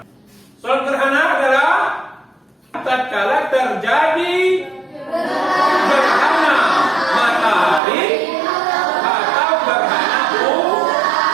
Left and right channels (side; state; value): left; drops out; at 7.8 s